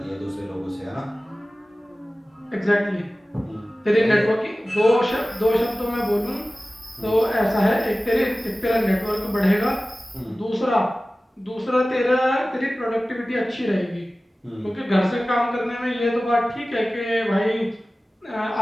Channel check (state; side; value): normal; both; correlation 0.96